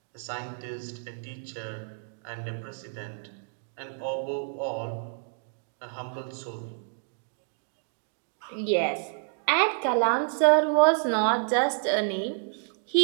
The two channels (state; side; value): silent; left; digital silence